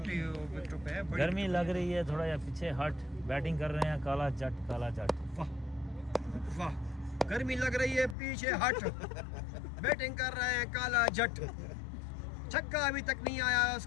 विकेटों पे है। गर्मी लग रही है थोड़ा, या पीछे हट बैटिंग कर रहे हैं काला जट काला जट। वाह वाह, गर्मी लग रही है, पीछे हट बैटिंग कर रहे हैं काला जट। छक्का अभी तक नहीं आया,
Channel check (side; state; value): right; drops out; at 8.2 s